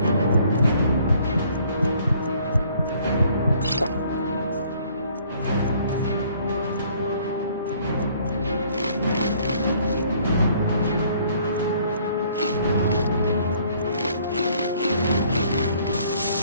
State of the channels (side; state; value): both; inverted; correlation -0.61